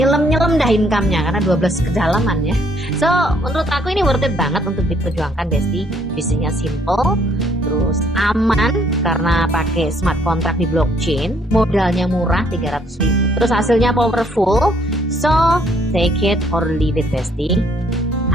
dah income-nya karena 12 kedalaman ya. So, menurut aku ini worth it banget untuk diperjuangkan Besti. Bisnisnya simple, terus aman karena pakai smart contract di blockchain, modalnya murah 300.000. Terus hasilnya powerful. So, take it or leave it Besti.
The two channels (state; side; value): normal; both; correlation 0.66